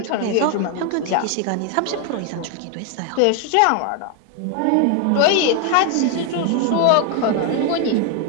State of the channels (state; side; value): different; both; correlation 0.00